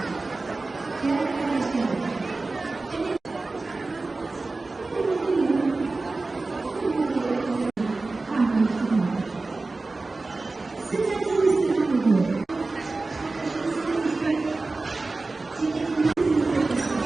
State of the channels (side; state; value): left; quieter; 3.5 dB